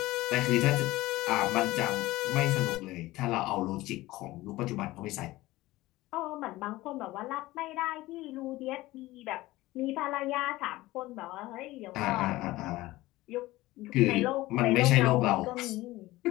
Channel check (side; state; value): right; quieter; 18.3 dB